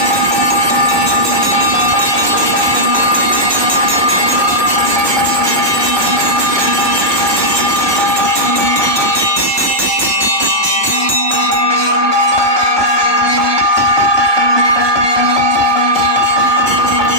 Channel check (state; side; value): late; left; 1.2 ms